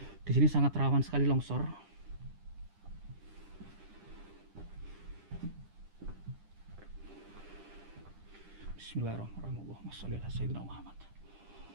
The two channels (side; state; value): left; late; 10 ms